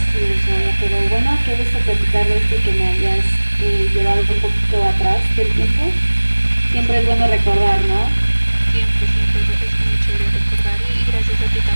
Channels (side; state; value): both; inverted; correlation -1.00